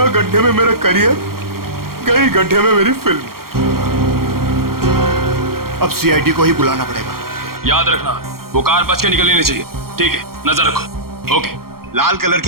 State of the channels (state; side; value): late; left; 0.93 ms